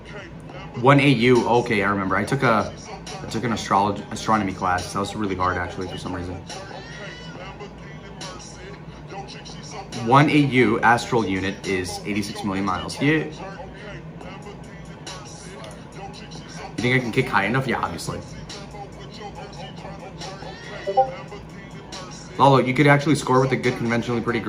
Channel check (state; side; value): identical; both; correlation 1.00